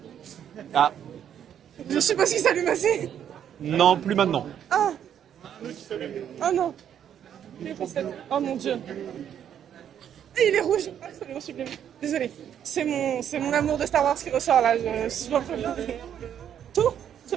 Ah, Je suppose qu'ils s'allument assez. non, plus maintenant. Ah. Oh non. Oh mon dieu. Et il est rouge. Absolument sublime. Désolée. C'est mon amour de Star Wars qui ressort là. Tout. Je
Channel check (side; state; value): left; quieter; 9.4 dB